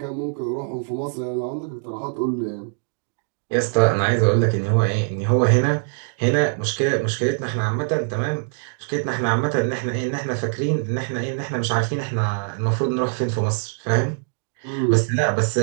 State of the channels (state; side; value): silent; left; digital silence